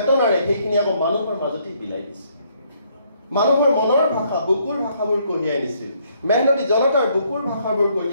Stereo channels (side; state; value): both; inverted; correlation -0.68